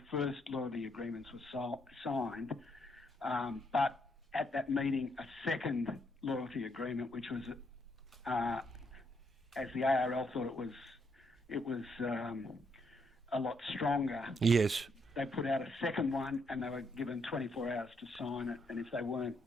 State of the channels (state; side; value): normal; both; correlation 0.75